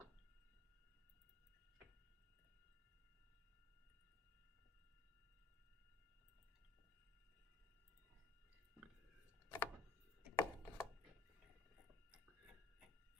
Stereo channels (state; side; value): quieter; right; 3.9 dB